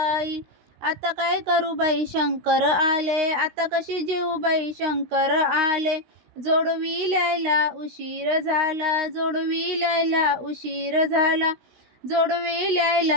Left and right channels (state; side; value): late; left; 16 ms